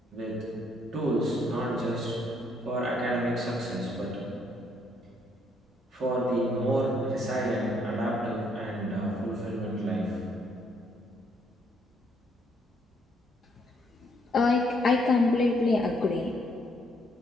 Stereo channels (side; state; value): both; normal; correlation 0.70